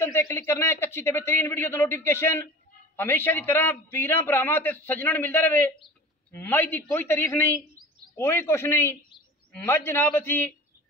ते क्लिक करना है एक अच्छी ते बेहतरीन वीडियो दा नोटिफिकेशन हमेशा की तरह वीरां भरावां ते सज्जणां नूं मिलदा रहे। मझ दी कोई तारीफ नहीं, कोई कुछ नहीं। मझ जनाब असीं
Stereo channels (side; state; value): both; normal; correlation 0.37